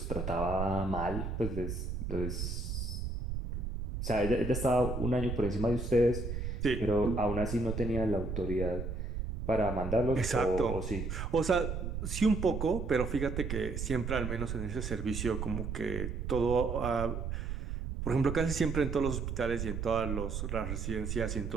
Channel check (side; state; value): right; noise; rumble, 4 dB below the sound